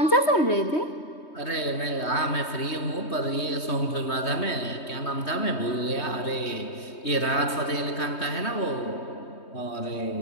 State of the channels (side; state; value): right; late; 3.2 ms